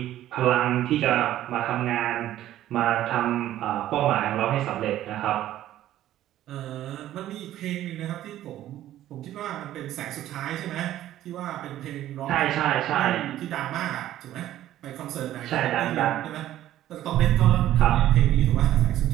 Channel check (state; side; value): quieter; left; 13.1 dB